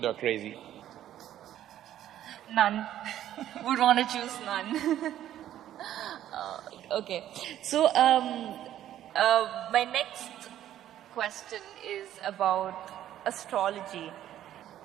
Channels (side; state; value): left; quieter; 12.0 dB